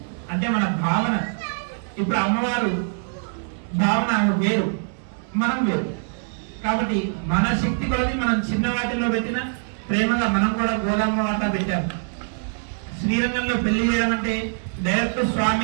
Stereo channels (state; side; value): silent; left; 63 dB below the other